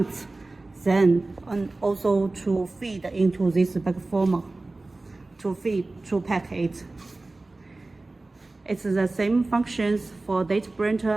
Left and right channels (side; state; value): left; quieter; 3.1 dB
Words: Then and also to feed into this bag former, to pack it. It's the same functions for date